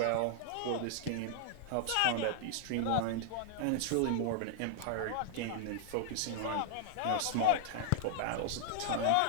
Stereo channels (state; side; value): different; both; correlation -0.01